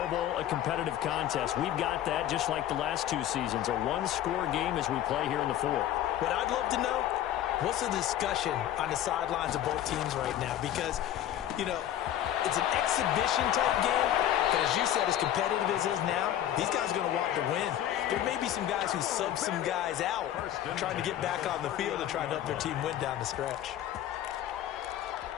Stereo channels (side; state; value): right; quieter; 11.7 dB